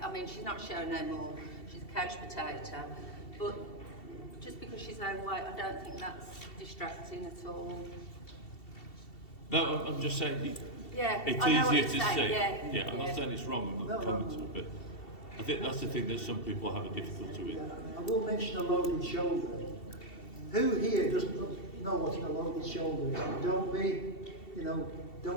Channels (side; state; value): right; late; 2.7 ms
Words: I mean, she's not showing no more. She's a couch potato. But just because she's overweight, I don't think that's distracting at all. No, I'm just saying Yeah, it's I know what easier you're to saying, see. yeah, I'm not saying it's wrong, I'm not commenting, but I think that's the thing that some people have a difficulty with. I will mention a loaded shoulder. Who here doesn't know what a loaded shoulder is?